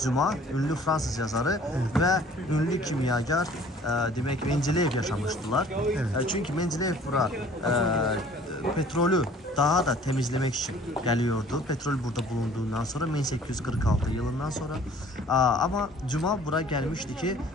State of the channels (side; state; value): both; normal; correlation 0.52